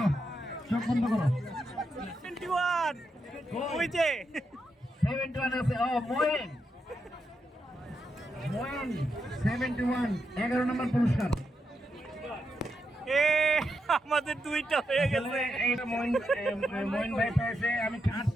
চোখ বন্ধ করো। 21 ওই যে 71 আছে। ও মইন 71 11 নম্বর পুরস্কার। এ আমাদের দুইটা হয়ে গেছে। এইটা মইন ভাই পেয়েছে। আমি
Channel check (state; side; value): normal; both; correlation 0.84